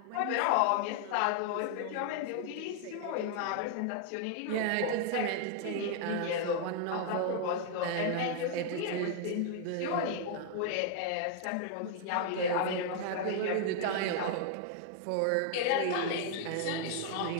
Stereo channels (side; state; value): both; different; correlation 0.00